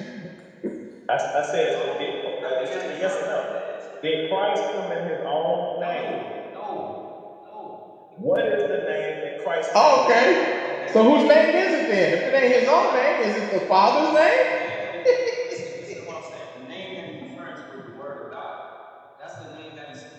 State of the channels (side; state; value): both; identical; correlation 1.00